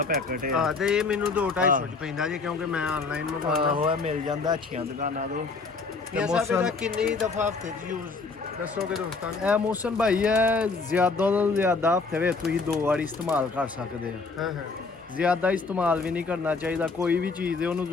ਪੈਕਟ ਹੈ। ਹਾਂ ਤੇ ਇਹ ਮੈਨੂੰ 2-250 ਚ ਪੈਂਦਾ ਜੀ ਕਿਉਂਕਿ ਮੈਂ ਆਨਲਾਈਨ ਮੰਗਵਾਉਂਦਾ। ਆਹੋ ਇਹ ਮਿਲ ਜਾਂਦਾ ਅੱਛੀਆਂ ਦੁਕਾਨਾਂ ਤੋਂ। ਮੀਆਂ ਸਾਹਿਬ ਇਹਦਾ ਕਿੰਨੀ ਦਫਾ ਹਫਤੇ 'ਚ ਯੂਜ਼ ਦੱਸੋਗੇ ਦੋਸਤਾਂ ਨੂੰ? ਇਹ ਮੌਸਮ ਭਾਈ ਹੈ ਜ਼ਿਆਦਾ ਤੋਂ ਜ਼ਿਆਦਾ ਹਫਤੇ ਵਿੱਚ ਤੁਸੀਂ 2 ਵਾਰੀ ਇਸਤੇਮਾਲ ਕਰ ਸਕਦੇ ਹੋ। ਹਾਂ ਹਾਂ ਜ਼ਿਆਦਾ ਇਸਤੇਮਾਲ ਵੀ ਨਹੀਂ ਕਰਨਾ ਚਾਹੀਦਾ। ਕੋਈ ਵੀ ਚੀਜ਼ ਹੈ ਉਹਨੂੰ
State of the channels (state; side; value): quieter; right; 4.2 dB